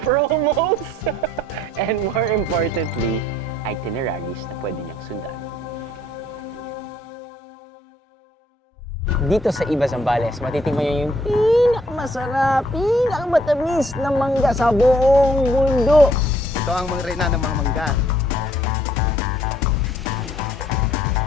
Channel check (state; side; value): normal; both; correlation 0.65